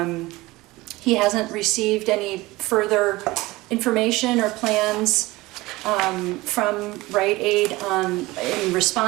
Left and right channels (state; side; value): quieter; left; 20.2 dB